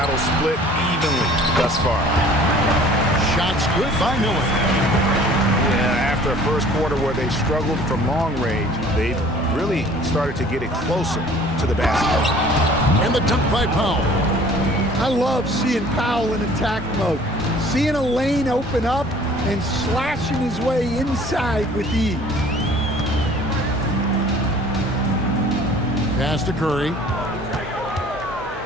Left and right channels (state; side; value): normal; both; correlation 0.51